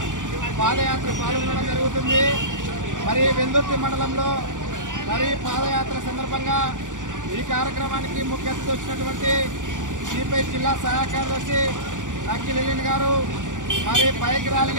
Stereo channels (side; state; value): left; late; 0.87 ms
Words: పాదయాత్ర పాల్గొనడం జరుగుతుంది. మరి వెల్దుర్తి మండలంలో మరి పాదయాత్ర సందర్భంగా ఈ కార్యక్రమానికి ముఖ్య అతిథి వచ్చినటువంటి సిపిఐ జిల్లా సహాయ కార్యదర్శి నక్కి లిలిన్ గారు మరి బైక్